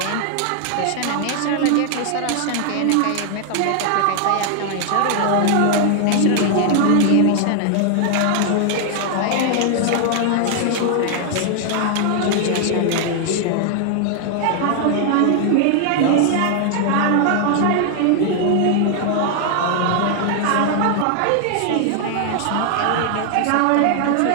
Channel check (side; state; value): both; different; correlation 0.00